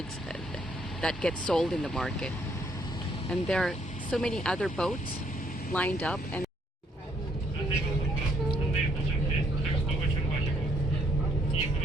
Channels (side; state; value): both; normal; correlation 0.69